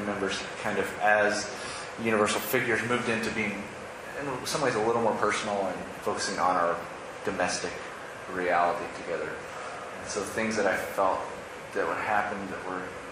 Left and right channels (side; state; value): both; identical; correlation 1.00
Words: kind of as universal figures moved into being, in some ways, a little more personal and focusing on our domestic reality together. And so things that I felt that would happen that were